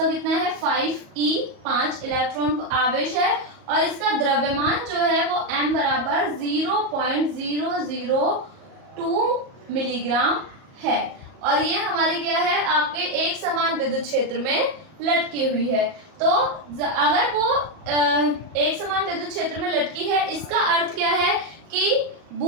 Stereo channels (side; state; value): left; late; 38 ms